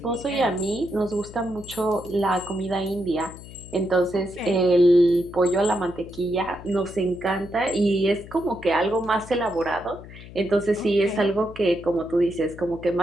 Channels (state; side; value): noise; left; hum, 16 dB below the sound